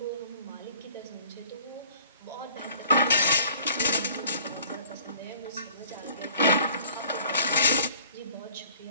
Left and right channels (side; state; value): both; inverted; correlation -0.52